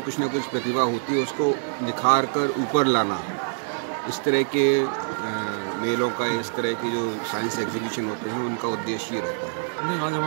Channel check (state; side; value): silent; left; 62 dB below the other